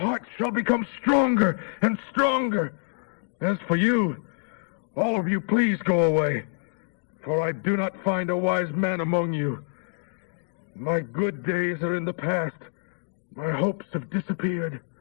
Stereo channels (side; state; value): right; silent; digital silence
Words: shall become stronger and stronger. As for you, all of you, please go away, for I do not find a wise man among you. My good days are in the past. My hopes have disappeared.